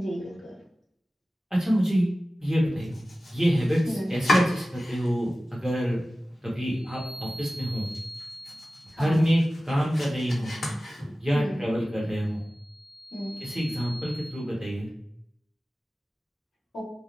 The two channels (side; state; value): both; normal; correlation 0.96